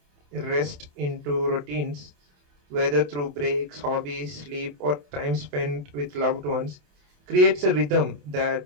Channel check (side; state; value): left; late; 28 ms